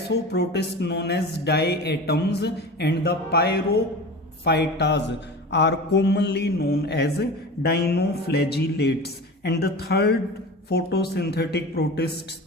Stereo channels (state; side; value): normal; both; correlation 0.33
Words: known as diatoms, and the Pyrophytas are commonly known as dinoflagellates. And the third photosynthetic protists